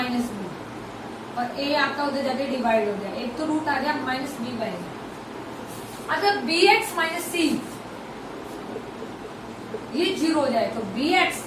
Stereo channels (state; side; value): identical; both; correlation 1.00